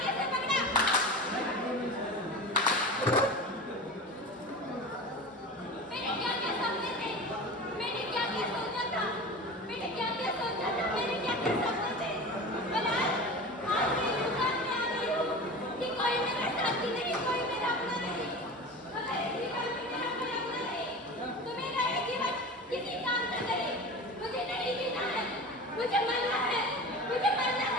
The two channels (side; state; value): both; normal; correlation 0.32